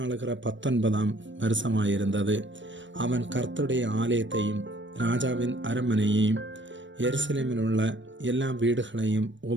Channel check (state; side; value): late; left; 0.54 ms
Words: 19ஆம் வருஷமாயிருந்தது. அவன் கர்த்தருடைய ஆலயத்தையும் ராஜாவின் அரண்மனையையும் எருசலேமில் உள்ள எல்லா வீடுகளையும்